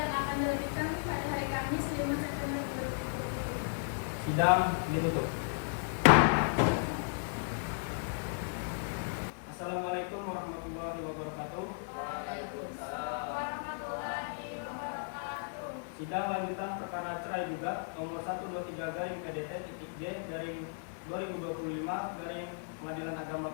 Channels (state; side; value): silent; right; 55 dB below the other